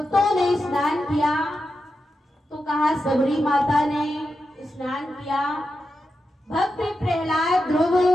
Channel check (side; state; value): both; normal; correlation 0.89